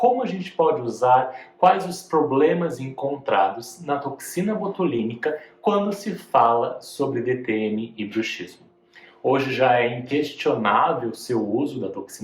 a gente pode usar, quais os problemas encontrados na toxina botulínica quando se fala sobre DTM e bruxismo. Hoje já é inquestionável o seu uso da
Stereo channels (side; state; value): both; identical; correlation 1.00